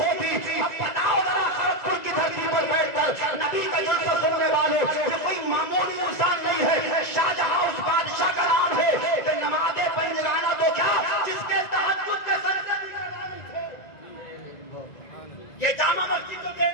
اب بتاؤ ذرا کھڑگپور کی دھرتی پر بیٹھ کر نبی کا جلسہ سننے والوں، یہ کوئی معمولی انسان نہیں ہے، شاہ جہاں اس بادشاہ کا نام ہے کہ نماز پنجگانہ تو کیا جس کے تہجد کے سجدے بھی لگانے تھے۔ یہ جامع مسجد تو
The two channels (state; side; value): late; right; 2.0 ms